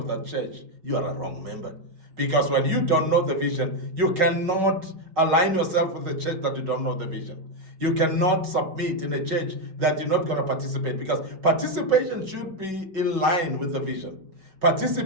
that church. You are a wrong member. Because when you don't know the vision, you cannot align yourself with the church that you don't know the vision. You cannot submit in a church that you're not going to participate, because participation should be in line with the vision.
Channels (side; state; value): left; late; 5.3 ms